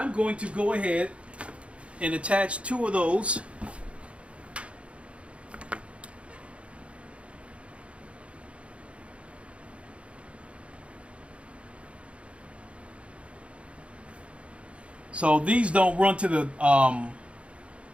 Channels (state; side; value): late; left; 0.061 ms